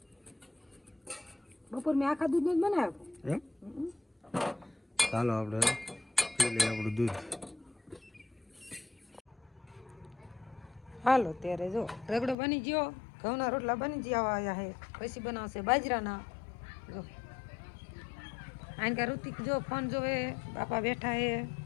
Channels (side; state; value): right; drops out; at 12.4 s